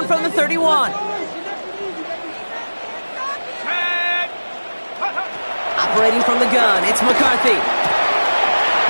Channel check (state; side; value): inverted; both; correlation -1.00